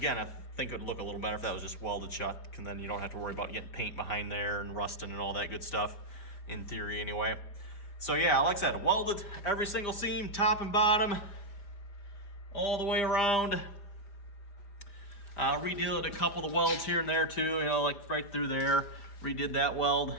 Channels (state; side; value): late; right; 5.0 ms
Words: I think it would look a little better if that was just welded shut, and then you don't have to worry about getting paint behind there and rusting and all that good stuff. In theory, anyway. So yeah, like I said, welded every single seam, top and bottom, all the way around. Redid a couple of the welds here and there too, like right through there. Redid that weld,